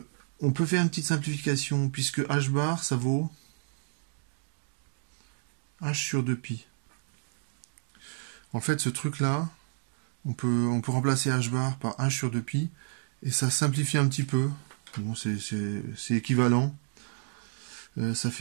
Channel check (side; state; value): left; silent; 58 dB below the other